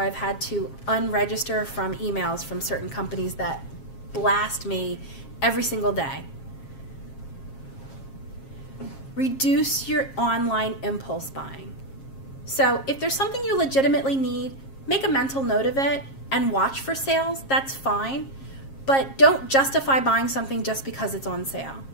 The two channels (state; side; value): late; right; 7.4 ms